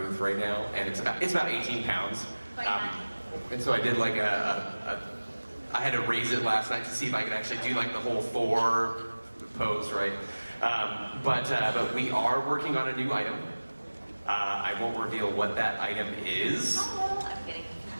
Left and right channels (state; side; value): inverted; both; correlation -1.00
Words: right now, and it's about 18 pounds. And so I did like I had to raise it last night to see if I could actually do like the whole Thor pose, right? But we are working on a new item. I won't reveal what that item is. Oh, I'm kidding.